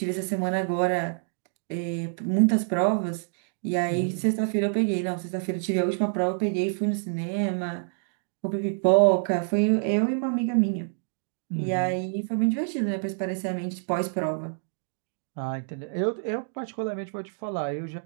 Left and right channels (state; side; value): silent; left; digital silence